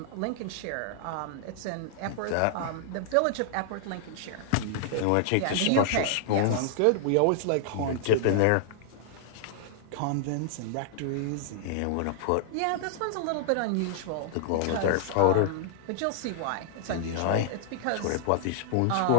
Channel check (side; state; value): both; different; correlation -0.01